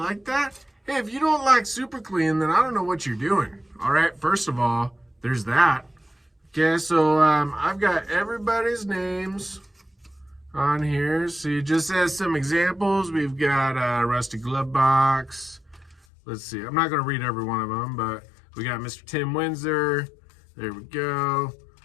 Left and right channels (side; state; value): right; drops out; at 16.0 s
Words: that? Hey, if you don't like super clean, then I don't know what you're doing. All right, first of all, there's that. Okay, so I've got everybody's names on here. See, just as some examples, we've got Rusty Glovebox. Let's see, I'm not going to read every one of them, but we got Mr. Tim Windsor. There we go.